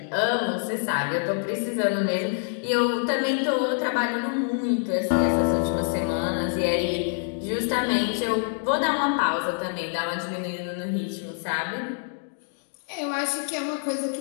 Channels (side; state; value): right; silent; 61 dB below the other